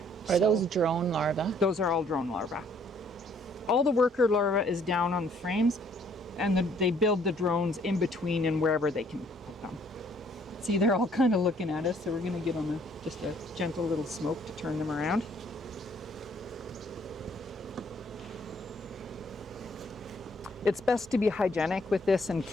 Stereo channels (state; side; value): normal; both; correlation 0.63